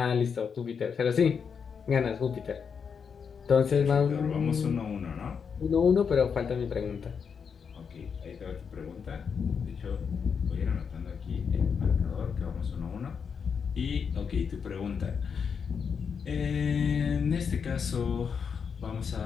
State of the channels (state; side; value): quieter; right; 6.4 dB